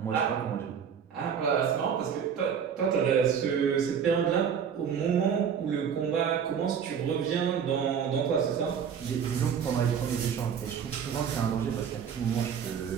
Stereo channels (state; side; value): quieter; left; 7.5 dB